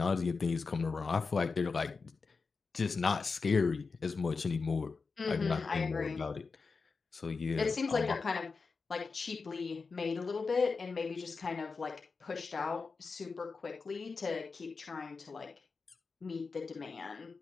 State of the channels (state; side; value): quieter; right; 4.6 dB